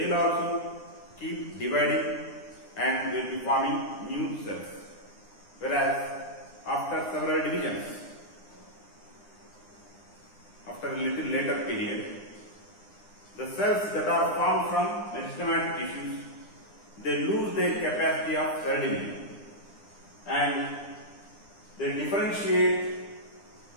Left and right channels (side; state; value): right; late; 9.8 ms